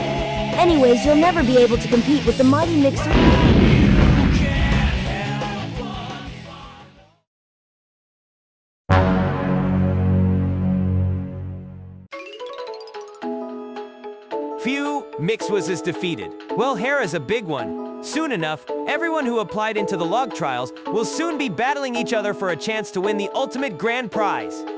Anyways, you'll never be able to compete with the mighty Mixer. Phew, Mixwas is defeated. Well, Hera's a big one. Soon enough, everyone who applied into the log trials will soon be battling each other for a chance to win the ultimate grand prize.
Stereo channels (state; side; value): identical; both; correlation 1.00